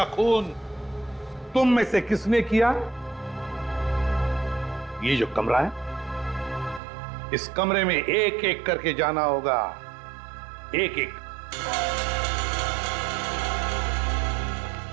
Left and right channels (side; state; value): left; drops out; at 6.8 s